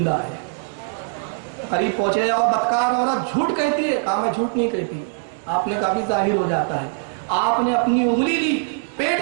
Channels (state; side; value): silent; left; digital silence